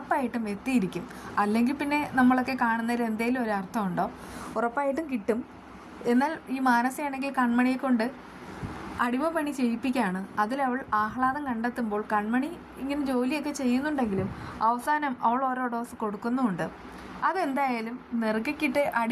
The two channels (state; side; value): identical; both; correlation 1.00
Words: എത്തിയിരിക്കും. അല്ലെങ്കിൽ പിന്നെ നമ്മളൊക്കെ കാണുന്നതിൽ എന്തെങ്കിലും ഒരു അർത്ഥമുണ്ടോ? ഉറപ്പായിട്ടും കിട്ടും. എന്നാൽ ഈ മാനസയാണെങ്കിൽ കൺമണിയെ കൊണ്ട് അടിമപ്പണി ചെയ്യിപ്പിക്കുകയാണ്. അതിലവൾ ആഹ്ലാദം കണ്ടെത്തുമ്പോൾ കൺമണി ഇങ്ങനെ ജോലിയൊക്കെ ചെയ്യുന്നുണ്ടെങ്കിലും അവസാനം അവൾ ഓരോ ഡോസ് കൊടുക്കുന്നുമുണ്ട്. അതെന്തായാലും നെറുകക്കിട്ട്